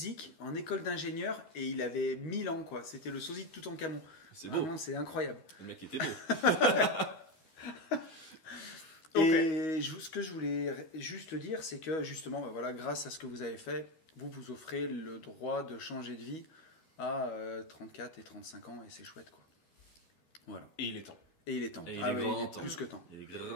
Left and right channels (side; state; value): right; late; 13 ms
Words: en école d'ingénieur, et il avait 1000 ans, quoi. C'était le sosie de Toutankhamon. C'est beau. Vraiment, c'est incroyable. Le mec était beau. Et ce que je voulais juste dire, c'est que justement, grâce à ce que vous avez fait, vous offrez le droit de changer de vie à 34 et 35 ans, et c'est chouette, quoi. Voilà. Et il est temps. Et il est temps. Et il Ah est oui, grand il est temps. plus que temps. Il est